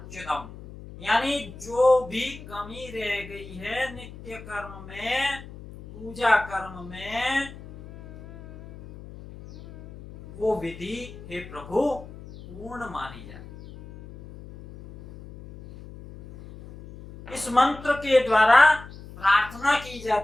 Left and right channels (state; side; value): noise; left; hum, 16 dB below the sound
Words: यानी जो भी कमी रह गई है नित्य कर्म में, पूजा कर्म में, वो विधि हे प्रभु पूर्ण मानी जाए। इस मंत्र के द्वारा प्रार्थना की